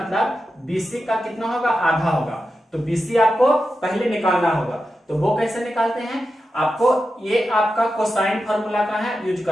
बीसी का कितना होगा आधा होगा, तो बीसी आपको पहले निकालना होगा। तो वो कैसे निकालते हैं, आपको ये आपका कोसाइन फार्मूला का है यूज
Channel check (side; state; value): both; normal; correlation 0.90